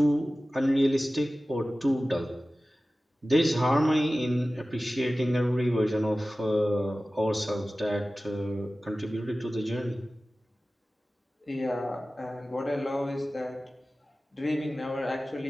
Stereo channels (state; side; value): normal; both; correlation 0.96